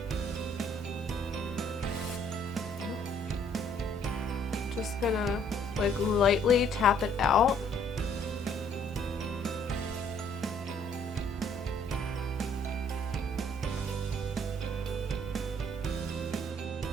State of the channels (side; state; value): both; normal; correlation 0.63